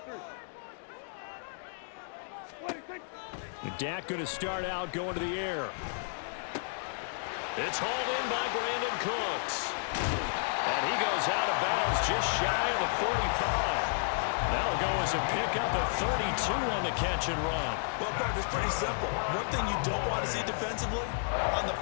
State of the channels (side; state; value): right; silent; digital silence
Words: Dak going to start out going to the air. It's hauled in by Brandon Cooks. And he goes out of bounds just shy of the 45. That'll go as a pickup of 32 on the catch and run. Well, Park, it's pretty simple. One thing you don't want to see defensively, on the